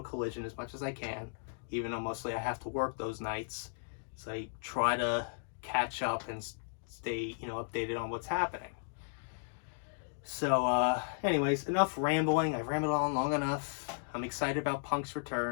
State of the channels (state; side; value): silent; right; digital silence